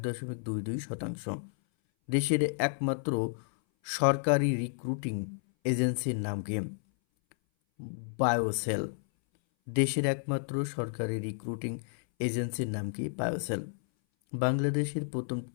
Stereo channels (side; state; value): right; silent; 57 dB below the other